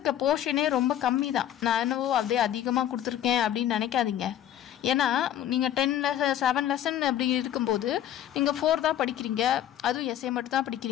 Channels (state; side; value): quieter; right; 11.1 dB